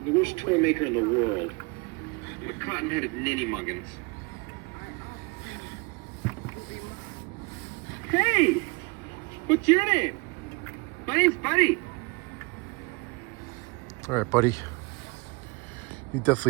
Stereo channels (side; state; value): left; quieter; 28.5 dB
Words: The worst toy maker in the world. The cotton-headed ninny muggins. Hey! What's your name? My name's Buddy. All right, buddy. You